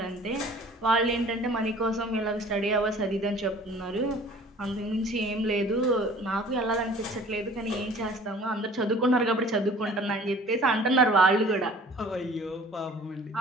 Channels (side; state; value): both; normal; correlation 0.49